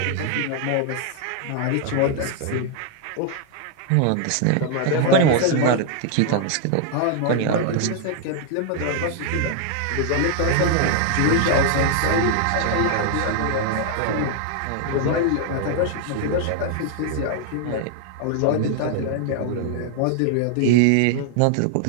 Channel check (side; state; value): both; different; correlation 0.00